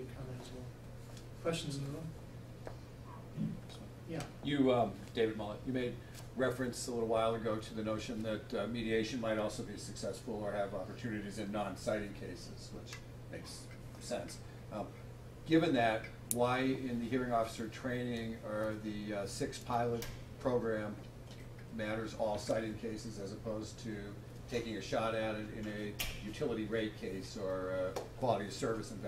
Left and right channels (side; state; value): both; identical; correlation 1.00